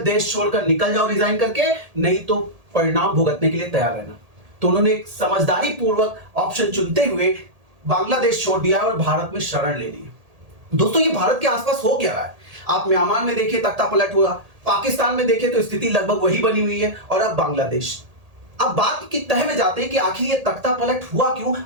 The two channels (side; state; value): left; late; 1.8 ms